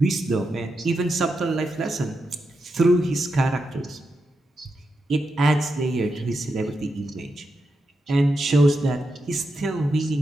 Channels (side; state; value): both; normal; correlation 0.86